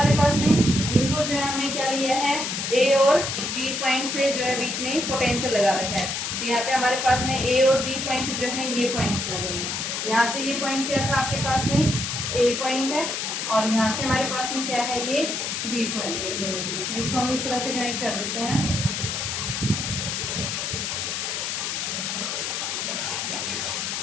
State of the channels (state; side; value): noise; left; hiss, 2 dB below the sound